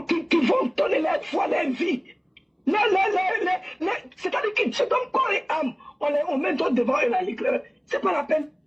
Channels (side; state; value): both; identical; correlation 1.00